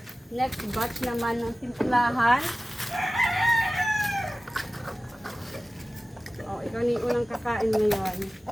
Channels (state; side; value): normal; both; correlation 0.96